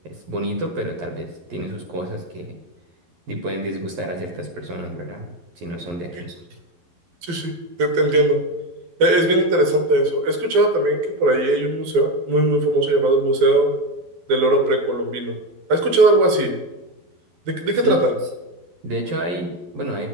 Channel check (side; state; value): left; late; 12 ms